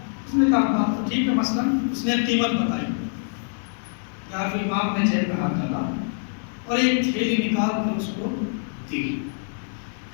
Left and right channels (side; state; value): right; silent; digital silence